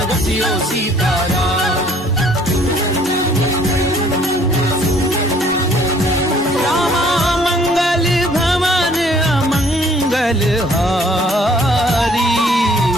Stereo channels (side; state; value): both; normal; correlation 0.59